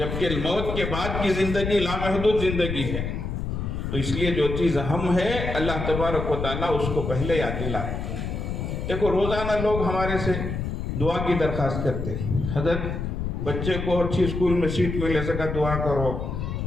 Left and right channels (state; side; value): noise; left; rumble, 4 dB below the sound